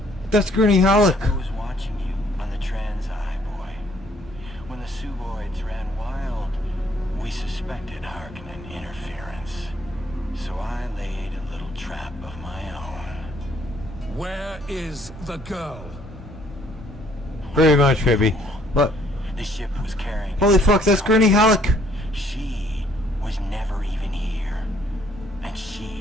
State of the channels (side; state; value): both; normal; correlation 0.64